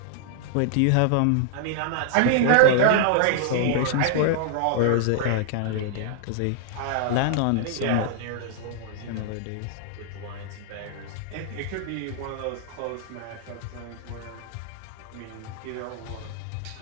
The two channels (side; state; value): both; different; correlation -0.01